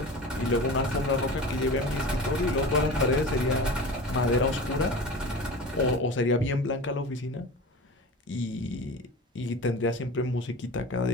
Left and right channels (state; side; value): normal; both; correlation 0.33